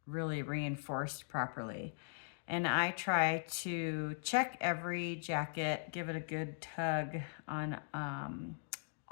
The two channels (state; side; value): silent; right; digital silence